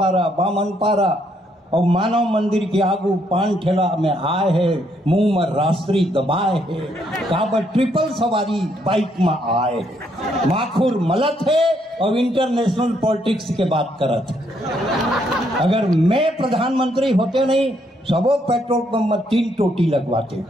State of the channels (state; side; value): normal; both; correlation 0.72